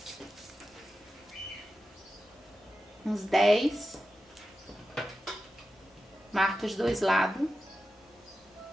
Uns 10. Marca os dois lados.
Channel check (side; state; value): both; normal; correlation 0.91